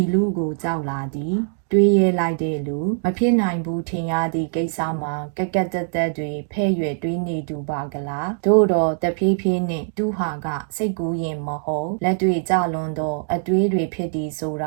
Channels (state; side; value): silent; left; digital silence